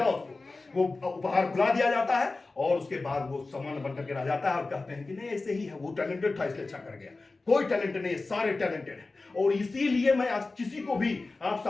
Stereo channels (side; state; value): right; quieter; 3.5 dB